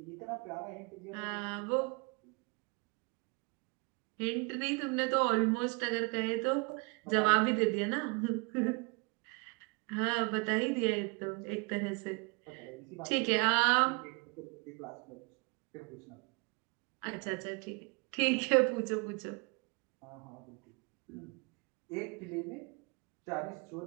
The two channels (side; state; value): left; quieter; 31.1 dB